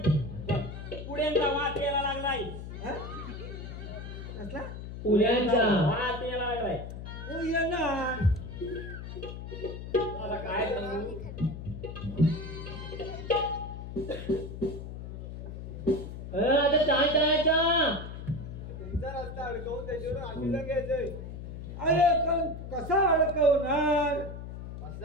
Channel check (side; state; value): left; noise; hum, 9 dB below the sound